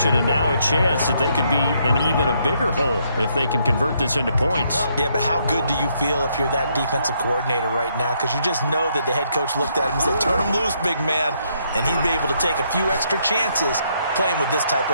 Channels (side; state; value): both; inverted; correlation -0.73